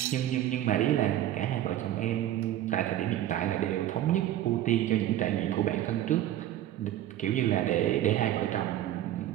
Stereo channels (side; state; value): left; quieter; 12.8 dB